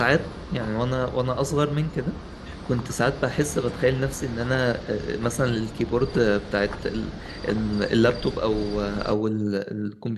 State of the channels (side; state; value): both; identical; correlation 1.00